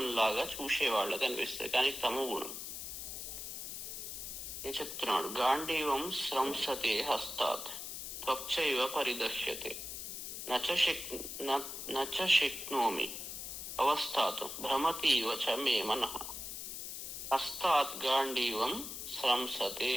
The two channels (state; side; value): noise; left; hiss, 7 dB below the sound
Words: లాగా చూసే వాళ్ళకి అనిపిస్తుంది, కానీ తమో గుణం. నేను చెప్తున్నాడు, గాంధీవం స్రంసతే హస్తాత్ త్వక్చైవ పరిదర్శ్యతే నచ శక్నోమి అవస్థాతు భ్రమతీవ చ మే మనః. హస్తాత్ గాంధీవం స్రంసతే,